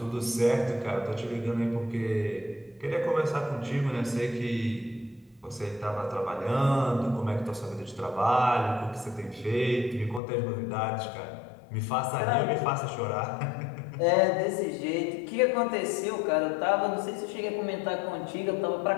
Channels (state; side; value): drops out; right; at 10.2 s